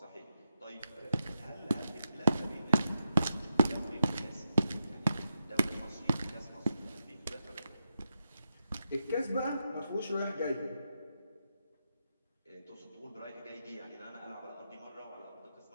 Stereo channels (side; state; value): both; inverted; correlation -0.86